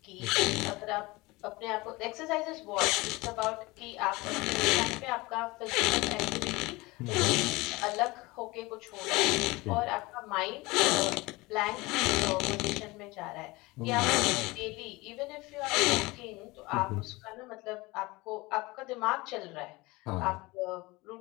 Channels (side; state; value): right; quieter; 22.3 dB